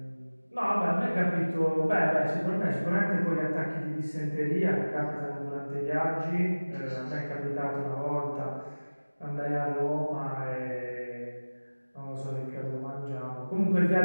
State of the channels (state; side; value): inverted; both; correlation -1.00